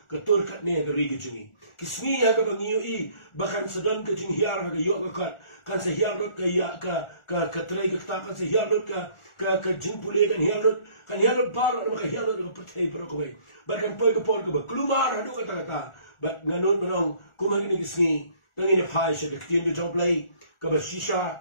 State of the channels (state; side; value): late; right; 1.4 ms